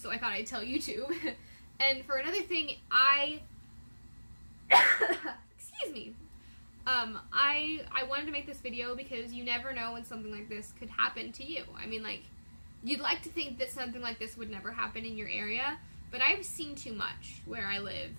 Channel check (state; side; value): inverted; both; correlation -1.00